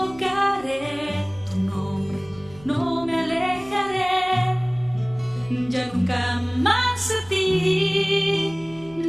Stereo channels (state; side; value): noise; right; hum, 22 dB below the sound